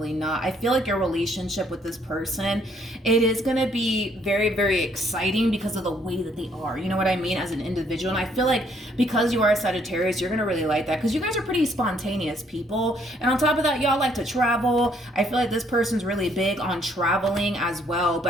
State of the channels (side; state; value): both; normal; correlation 0.66